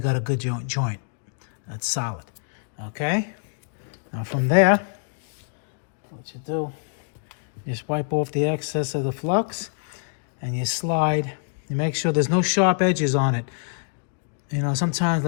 a good joint. That's solid. Okay. Now from there, what you do, you just wipe off the excess of the flux, and you slide. You make sure there's no sharp edges on it. You know, sometimes,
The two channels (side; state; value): right; silent; 61 dB below the other